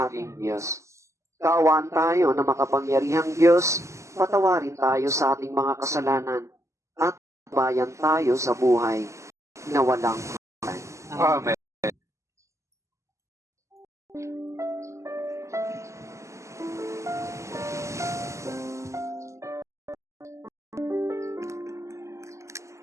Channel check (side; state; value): left; late; 0.14 ms